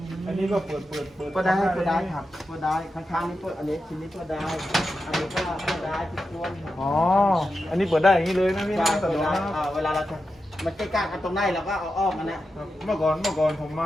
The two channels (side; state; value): both; normal; correlation 0.90